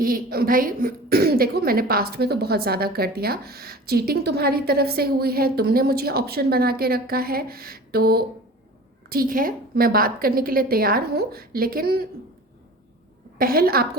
भाई देखो, मैंने पास्ट में तो बहुत ज़्यादा कर दिया, चीटिंग तुम्हारी तरफ से हुई है, तुमने मुझे ऑप्शन बना के रखा है, तो ठीक है मैं बात करने के लिए तैयार हूँ, लेकिन पहल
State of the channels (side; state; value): both; normal; correlation 0.39